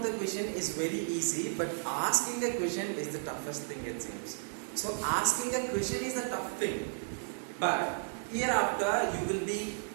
the question is very easy, but asking a question is the toughest thing, it seems. So asking a question is a tough thing, but hereafter you will be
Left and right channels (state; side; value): silent; left; digital silence